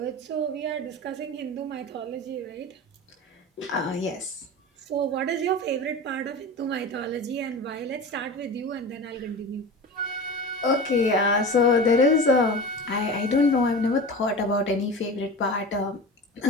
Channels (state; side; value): normal; both; correlation 0.31